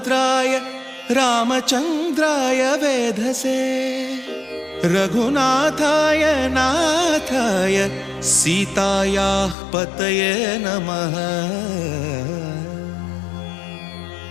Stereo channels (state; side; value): drops out; right; at 9.6 s